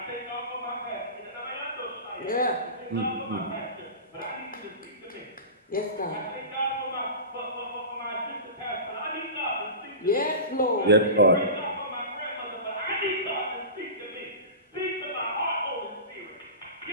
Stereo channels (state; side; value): inverted; both; correlation -0.30